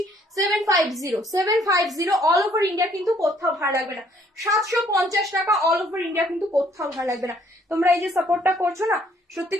750 অল ওভার ইন্ডিয়া, কিন্তু কোথাও ভালো লাগবে না। 750 টাকা অল ওভার ইন্ডিয়া, কিন্তু কোথাও ভালো লাগবে না। তোমরা এই যে সাপোর্টটা করছো না, সত্যি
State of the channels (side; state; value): both; normal; correlation 0.63